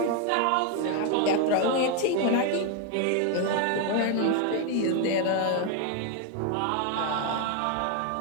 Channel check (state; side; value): different; both; correlation 0.01